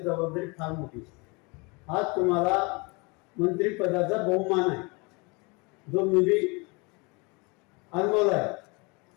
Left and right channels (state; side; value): quieter; right; 28.6 dB